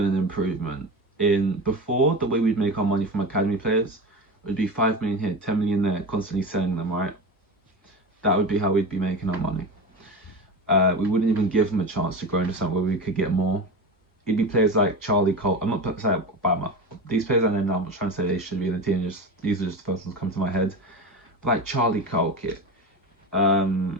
an improvement. In before, the way we'd make our money from academy players would be 5 million here, 10 million there, constantly selling them, right? That would be how we'd be making our money. We wouldn't even give them a chance to grow into something where we could get more. It'd be players like Charlie Cole. I'm not saying these players I know now, I'm not trying to say they should be in the team, these are just the first ones come to my head. But like Charlie Cole,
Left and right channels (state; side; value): normal; both; correlation 0.25